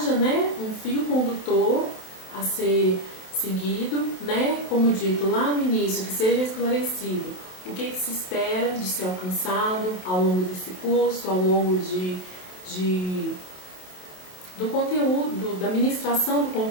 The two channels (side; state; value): right; late; 27 ms